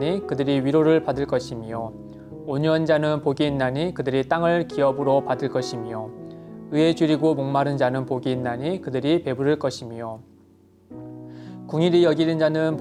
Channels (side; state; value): both; identical; correlation 1.00